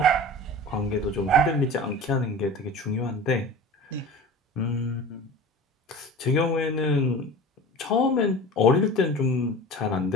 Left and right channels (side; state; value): both; normal; correlation 0.37